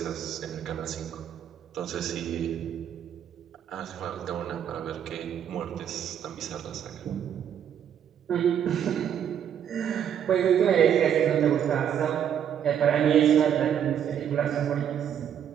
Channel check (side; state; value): left; quieter; 9.1 dB